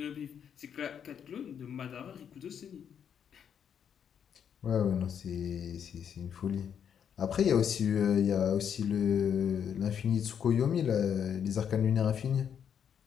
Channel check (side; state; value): right; quieter; 8.2 dB